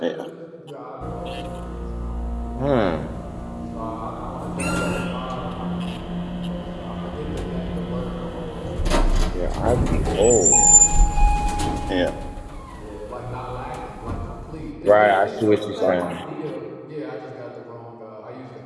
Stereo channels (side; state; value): both; identical; correlation 1.00